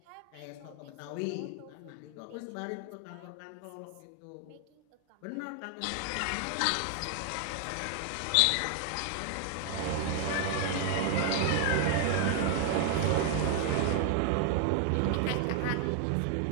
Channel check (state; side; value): different; both; correlation 0.00